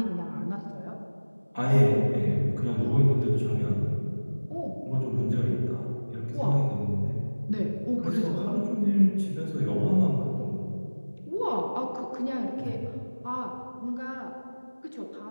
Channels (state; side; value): inverted; both; correlation -1.00